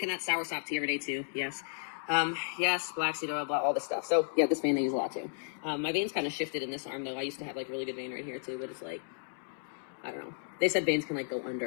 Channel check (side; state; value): right; silent; digital silence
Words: that sour sop tea every day too. Yes. Yes, black seed oil, blah, all this stuff. So yeah, this vein I use a lot too. My veins kind of shifted in this arm though. I used to have like really good vein right here too, but it's like, I don't know. They said veins can like go